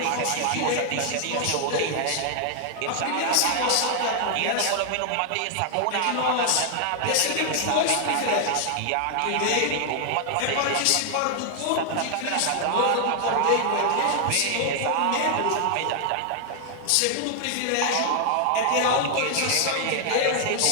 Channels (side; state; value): both; different; correlation 0.00